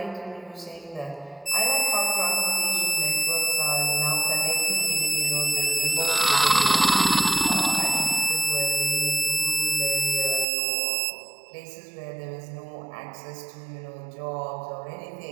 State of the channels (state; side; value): drops out; left; at 10.5 s